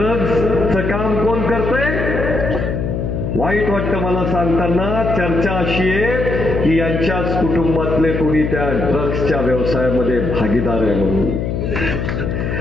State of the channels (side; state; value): left; noise; hum, 2 dB below the sound